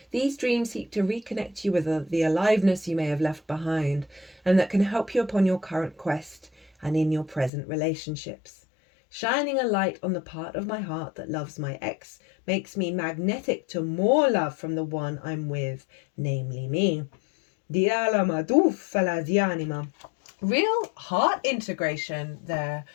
dreams seek to reconnect you with the aliveness you may have left behind, and that can help you upon your current quest and in your present relationships. Shining a light on the part of my heart that loves my ex makes me magnetic to more love from the one I'm with, namely me. Real heart integration there,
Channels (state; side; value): drops out; right; at 7.5 s